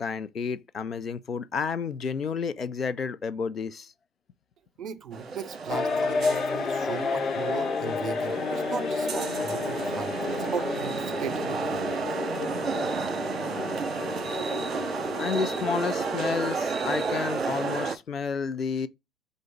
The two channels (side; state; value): both; normal; correlation 0.71